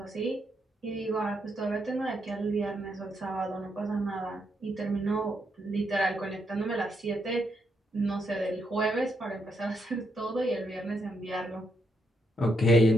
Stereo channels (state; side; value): normal; both; correlation 0.79